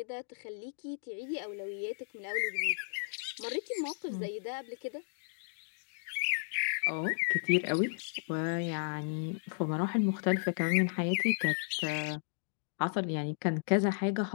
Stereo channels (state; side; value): silent; right; digital silence